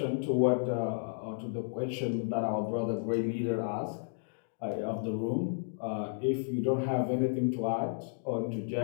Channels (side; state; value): right; silent; digital silence